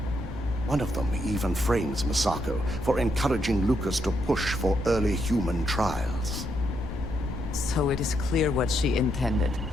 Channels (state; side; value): normal; both; correlation 0.78